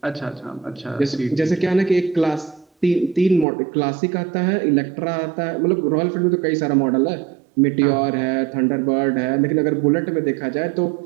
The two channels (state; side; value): drops out; left; at 3.5 s